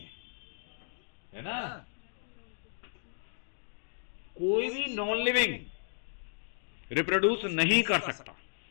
है ना। कोई भी नॉन लिविंग रिप्रोड्यूस नहीं कर सकता।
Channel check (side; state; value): right; silent; digital silence